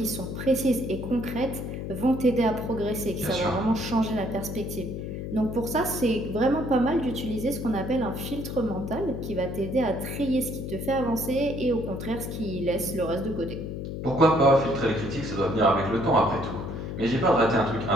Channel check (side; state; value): left; noise; hum, 6 dB below the sound